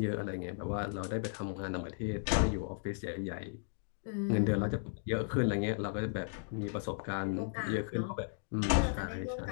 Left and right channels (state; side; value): silent; right; digital silence